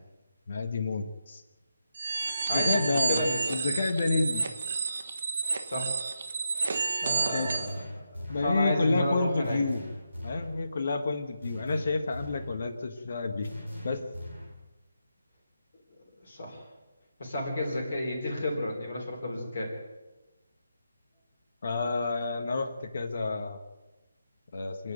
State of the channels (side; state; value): both; inverted; correlation -0.84